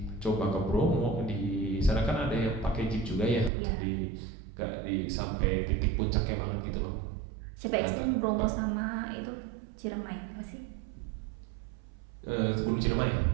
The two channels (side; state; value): left; drops out; at 3.5 s